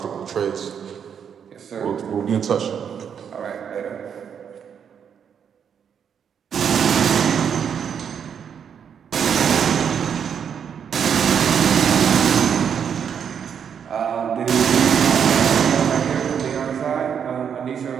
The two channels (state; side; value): quieter; left; 7.7 dB